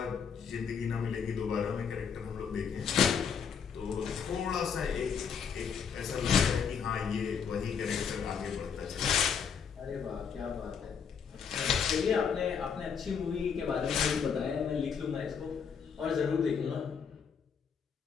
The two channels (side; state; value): right; quieter; 6.8 dB